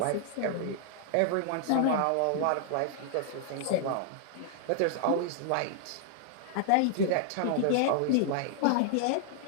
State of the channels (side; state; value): both; different; correlation 0.00